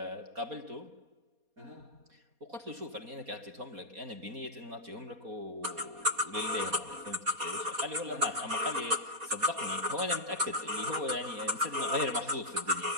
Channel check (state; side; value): late; left; 4.2 ms